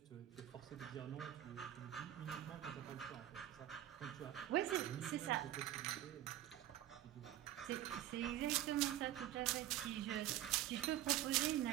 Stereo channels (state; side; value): quieter; left; 12.8 dB